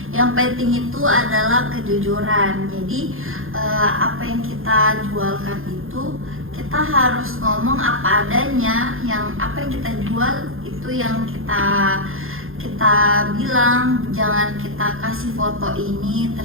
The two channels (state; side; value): late; left; 0.60 ms